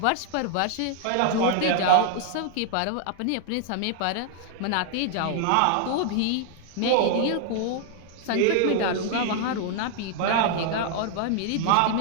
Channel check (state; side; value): different; both; correlation 0.00